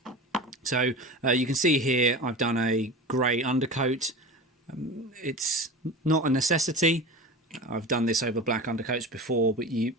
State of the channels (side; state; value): both; normal; correlation 0.31